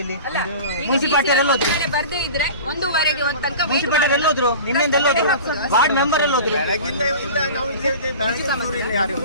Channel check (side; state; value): both; inverted; correlation -0.36